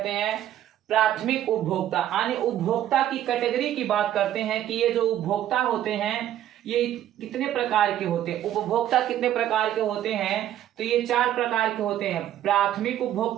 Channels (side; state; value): left; quieter; 11.9 dB